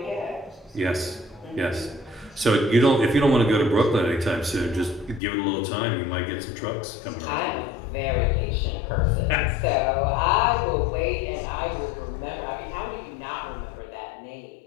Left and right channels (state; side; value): drops out; right; at 5.2 s